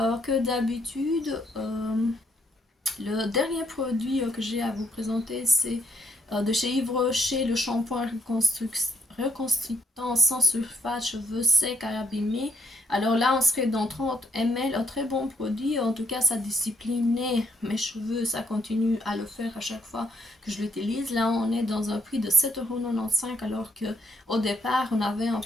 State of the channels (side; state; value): both; normal; correlation 0.72